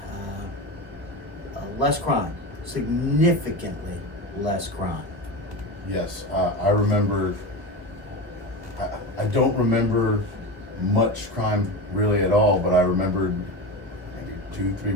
less crime, significantly less crime. Yes, I remember, I don't remember much crime really at all, but I remembered maybe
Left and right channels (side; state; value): left; late; 1.3 ms